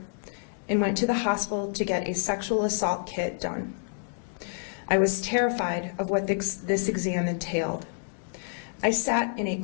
and went to the hospital to get a sexual assault kit done. I was terrified of what this exam entailed. I sat in a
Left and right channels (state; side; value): silent; right; digital silence